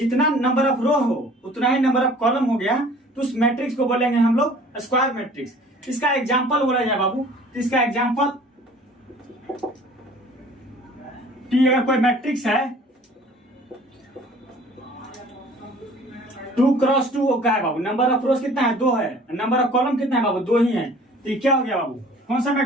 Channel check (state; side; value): normal; both; correlation 0.50